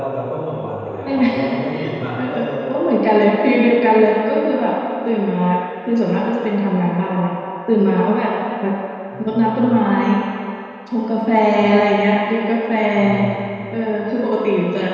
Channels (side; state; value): both; identical; correlation 1.00